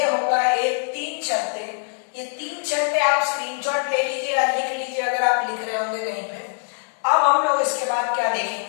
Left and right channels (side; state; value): right; silent; 63 dB below the other